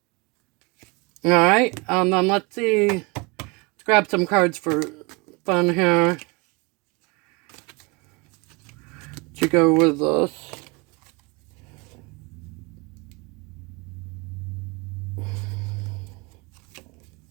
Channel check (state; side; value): quieter; left; 27.7 dB